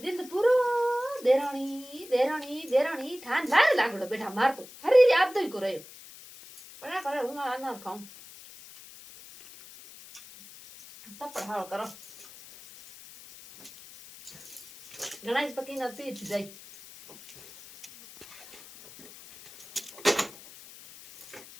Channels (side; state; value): left; noise; hiss, 18 dB below the sound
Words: दिन पूरो देरानी ठान लाल लागड़ो बेटा मार तो हरी याद तो ही को रयो पड़ा करे हूं आना खाऊं तब पढ़ाओ करो गणेश पकी ना पीठ जाई